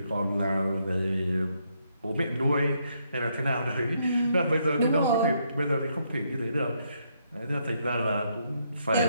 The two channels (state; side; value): inverted; both; correlation -0.75